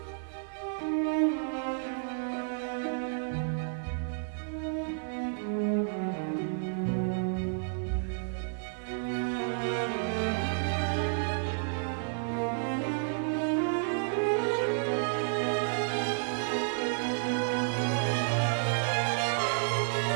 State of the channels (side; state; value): left; silent; 57 dB below the other